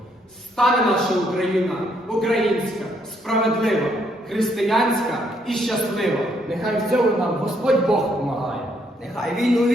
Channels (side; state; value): both; normal; correlation 0.71